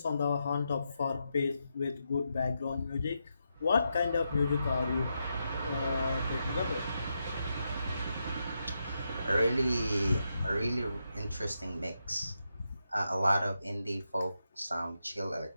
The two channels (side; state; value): both; inverted; correlation -0.85